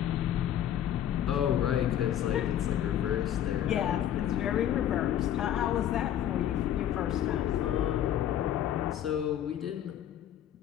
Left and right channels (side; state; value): right; quieter; 10.8 dB